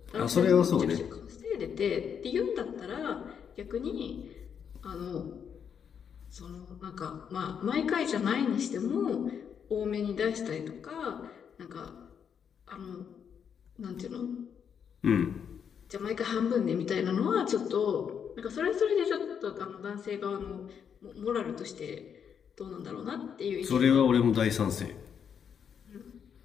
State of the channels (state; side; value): quieter; right; 7.6 dB